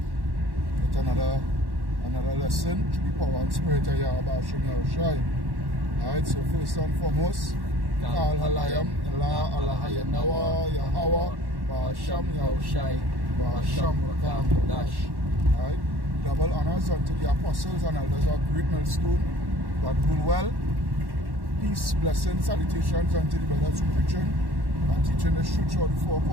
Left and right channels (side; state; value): left; late; 1.1 ms